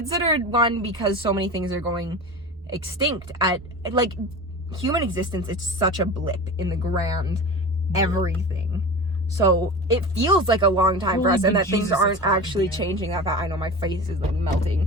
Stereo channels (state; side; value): normal; both; correlation 0.31